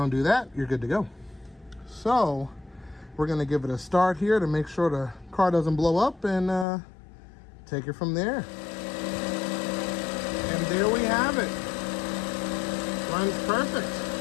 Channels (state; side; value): drops out; right; at 6.7 s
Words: do that, you're good to go. So we're gonna give it a start here to make sure the car doesn't blow up, and take it from there. And there we have it. Runs perfect.